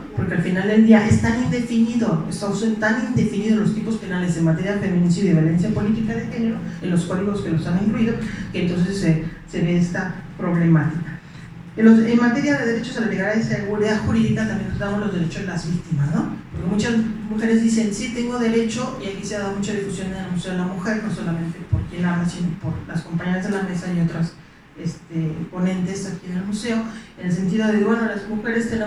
Porque al final del día es tan indefinido, son tan indefinidos los tipos penales en materia de feminicidio y violencia política de género en los códigos que los han incluido, que entonces se ve esta problemática. En materia de derechos a la legalidad y seguridad jurídica también tratamos los derechos de las víctimas, ¿no? Porque muchas mujeres dicen, sí, tengo derecho, y aquí se ha dado mucha difusión en el Museo de la Mujer, no solamente por quien habla, sino por las compañeras de la mesa y otras ponentes aquí en el museo, en el sentido de, bueno, las mujeres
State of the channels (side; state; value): both; identical; correlation 1.00